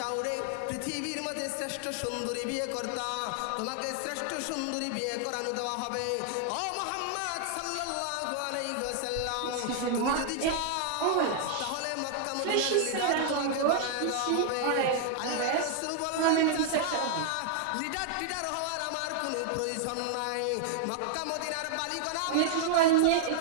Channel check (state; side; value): different; both; correlation 0.00